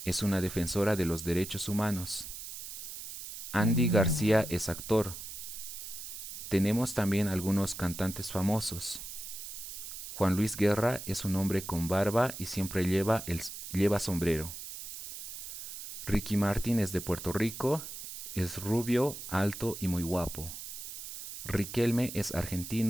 Es una defensora de los derechos humanos. Andy García es actor. Tenemos también algunos cantantes famosos. Juan Luis Guerra es un hombre con barba y siempre lleva sombrero. Ricky Martin es de Puerto Rico, es rubio, alto y muy guapo. Riquelme es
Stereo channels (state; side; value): noise; right; hiss, 9 dB below the sound